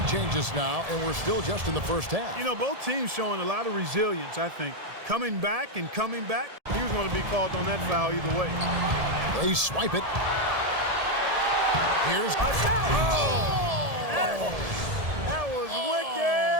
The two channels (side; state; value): left; late; 1.7 ms